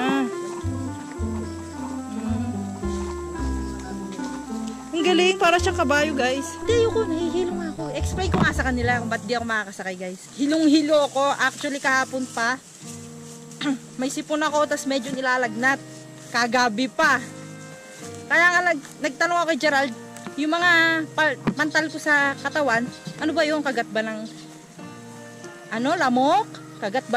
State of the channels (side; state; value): both; identical; correlation 1.00